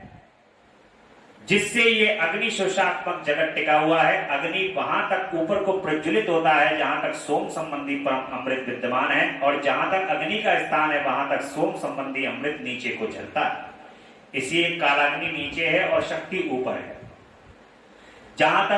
जिससे ये अग्नि शोषात्मक जगत टिका हुआ है। अग्नि वहां तक ऊपर को प्रज्वलित होता है जहां तक सोम संबंधी परम अमृत विद्यमान है और जहां तक अग्नि का स्थान है वहां तक सोम संबंधी अमृत नीचे को झलता है। इसलिए कालाग्नि नीचे है और शक्ति ऊपर है। जहां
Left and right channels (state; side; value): identical; both; correlation 1.00